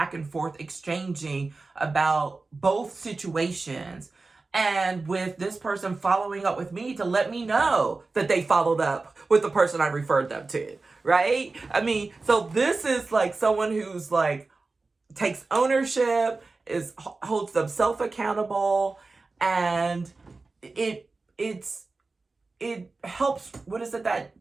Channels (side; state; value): left; quieter; 3.7 dB